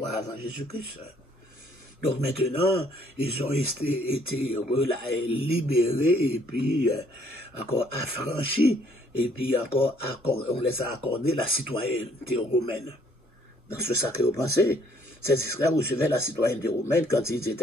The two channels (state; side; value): normal; both; correlation 0.63